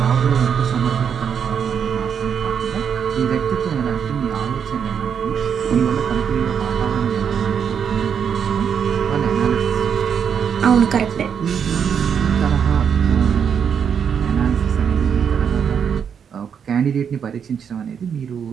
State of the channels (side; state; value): left; quieter; 7.5 dB